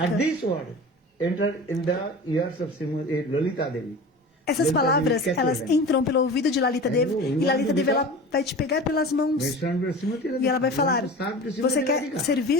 enter in the ears of Lalita Devi. Essas palavras, elas entram pelo ouvido de Lalita Devi, e Lalita Devi, ela vai te pegar pelas mãos e ela vai falar: você quer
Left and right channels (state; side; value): normal; both; correlation 0.35